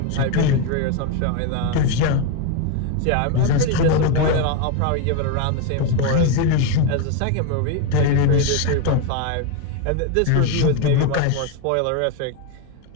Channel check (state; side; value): different; both; correlation 0.02